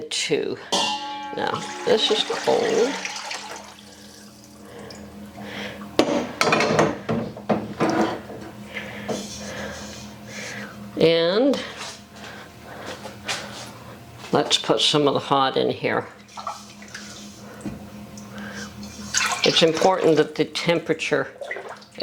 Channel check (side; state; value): both; identical; correlation 1.00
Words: 2. Now, this is cold. And let's put some of the hot in here. It's important that the temperature